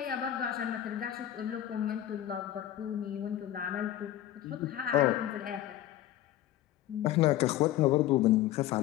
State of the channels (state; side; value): quieter; right; 12.9 dB